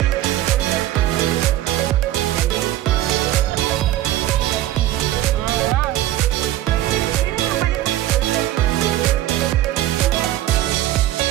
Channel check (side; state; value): left; quieter; 14.1 dB